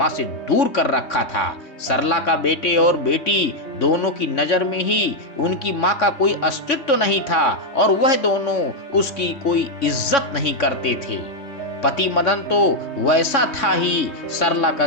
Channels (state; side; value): late; right; 3.6 ms